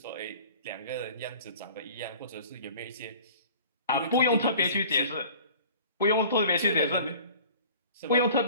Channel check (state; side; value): inverted; both; correlation -0.45